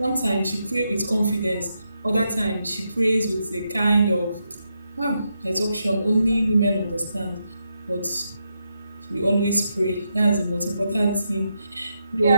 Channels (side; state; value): both; inverted; correlation -0.83